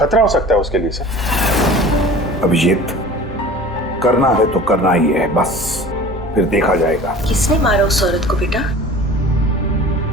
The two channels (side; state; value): both; normal; correlation 0.42